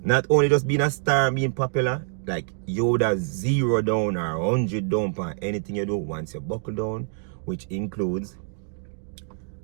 Not only just being a star and being popular, like you would have 0 down or 100 down on anything you do once you buckle down, which includes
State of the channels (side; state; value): left; silent; 61 dB below the other